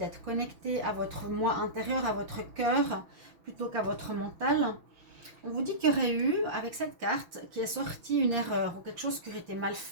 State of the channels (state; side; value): late; left; 6.0 ms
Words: connecté à votre moi intérieur, à votre cœur, plutôt qu'à votre mental. On vous dit qu'il y aurait eu, avec cette carte, qui est sortie une erreur ou quelque chose qui aurait été mal